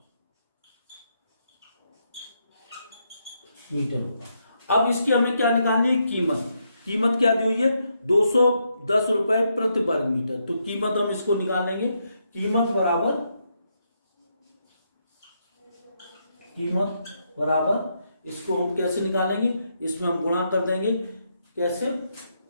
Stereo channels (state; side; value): inverted; both; correlation -0.79